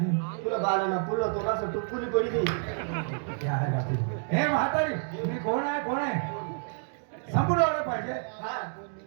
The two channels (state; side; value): silent; left; 59 dB below the other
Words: तुला बालाना पुरलं तो असं टुकुली पडी दे ते आहे का ते? हे म्हातारी मी कोण आहे संपूर्ण आलं पाहिजे. हा